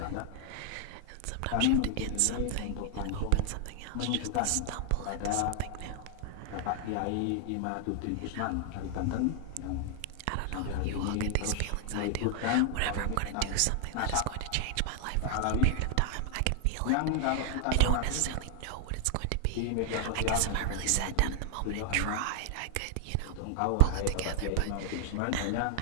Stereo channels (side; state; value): both; different; correlation 0.00